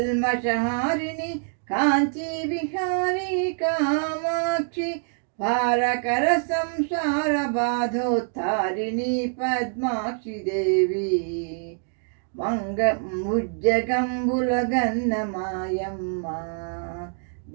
కాంచీ విహారీ కామాక్షి భారకర సంసార బాధోత్తారిణి పద్మాక్షి దేవి ముజ్జగంబుల గన్నమాయమ్మ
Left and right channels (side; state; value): left; silent; 62 dB below the other